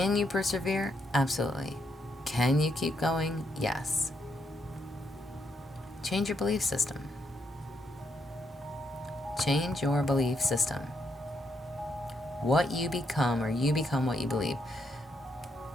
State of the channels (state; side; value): normal; both; correlation 0.78